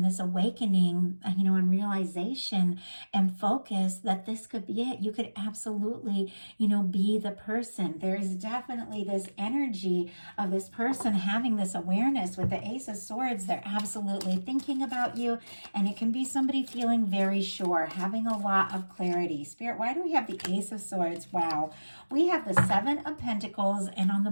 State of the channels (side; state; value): both; inverted; correlation -1.00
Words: this awakening, and realization and focus that this could be it. You could absolutely, be the person. There is definitely this energy of this person having this awareness with the Ace of Swords. They're absolutely thinking about you, and it can be somebody feeling very sure, having a lot of clarity. Spirit, why do we have the Ace of Swords? Wow. We have the Seven of Pentacles, and on the